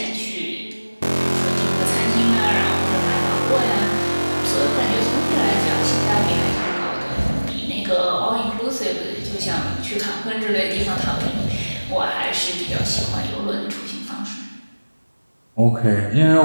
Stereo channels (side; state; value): both; inverted; correlation -1.00